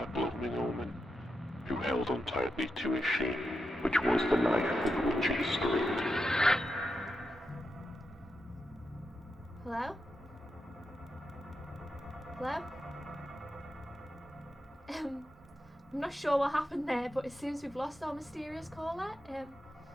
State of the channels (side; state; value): both; normal; correlation 0.86